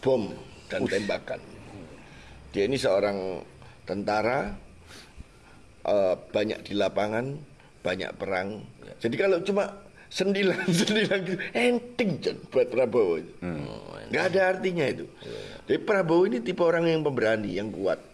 bom dan tembakan. Dia ini seorang tentara, banyak di lapangan, banyak perang. Jadi kalau cuma sendilan gitu, enteng buat Prabowo. Nggak ada artinya itu. Jadi Prabowo ini tipe orang yang pemberani, yang kuat.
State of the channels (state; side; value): identical; both; correlation 1.00